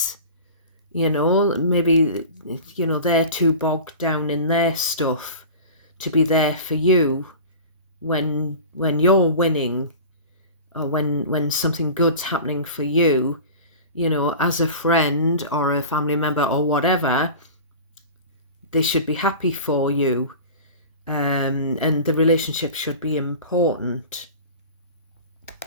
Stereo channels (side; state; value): both; inverted; correlation -0.36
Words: Maybe, they're too bogged down in their stuff to be there for you when you're winning, or when something good's happening for you. you know, as a friend or a family member or whatever, they should be happy for you, and the relationship should be important.